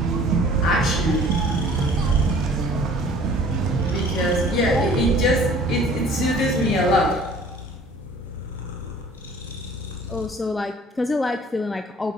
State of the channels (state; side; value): normal; both; correlation 0.51